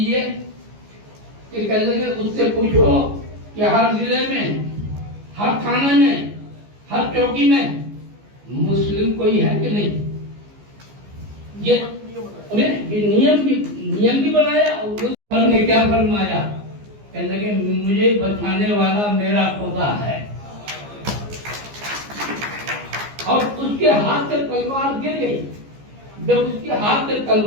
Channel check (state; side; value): late; left; 15 ms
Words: कि कह लगे उससे पूछो कि हर जिले में, हर थाने में, हर चौकी में मुस्लिम कोई है कि नहीं। ये नियम भी बनाया और ने क्या फरमाया, कह लगे मुझे बचाने वाला मेरा खुदा है। और उसके हाथ से तलवार गिर गई। जब उसके हाथ से